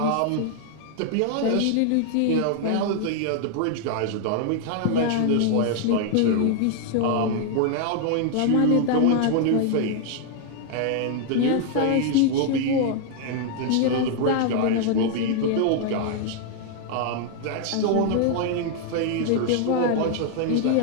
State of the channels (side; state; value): both; different; correlation 0.00